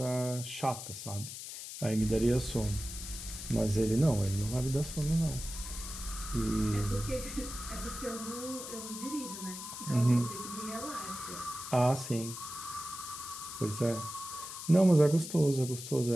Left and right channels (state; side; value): noise; left; hiss, 9 dB below the sound